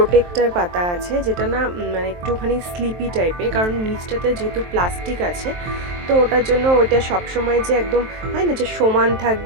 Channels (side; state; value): left; late; 23 ms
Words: পাতা আছে, যেটা না মানে একটুখানি স্লিপি টাইপের, কারণ নিচটাতে যেহেতু প্লাস্টিক আছে, তো ওটার জন্য ওইটা সবসময় যে একদম হয় না যে সমান